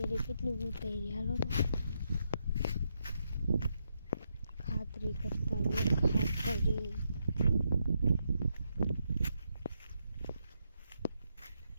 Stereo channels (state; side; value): inverted; both; correlation -0.81